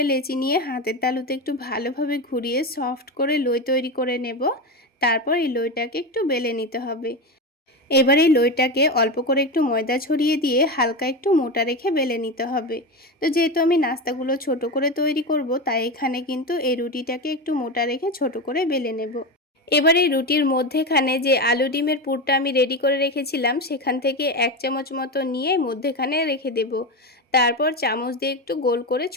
লেচি নিয়ে হাতের তালুতে একটু ভালোভাবে ঘুরিয়ে সফট করে লই তৈরি করে নেব। তারপর এই লইটাকে একটু বেলে নিতে হবে। এবার এই লইটাকে অল্প করে একটু ময়দা ছড়িয়ে দিয়ে হালকা একটু মোটা রেখে বেলে নিতে হবে। তো যেহেতু আমি নাস্তাগুলো ছোট করে তৈরি করব, তাই এখানে কিন্তু এই রুটিটাকে একটু মোটা রেখে ছোট করে বেলে নেব। এবার এই রুটির মধ্যেখানে যে আলু ডিমের পুরটা আমি রেডি করে রেখেছিলাম সেখান থেকে 1 চামচ মতো নিয়ে মধ্যেখানে রেখে দেব। তারপর চামচ দিয়ে একটু গোল করে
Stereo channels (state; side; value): normal; both; correlation 0.19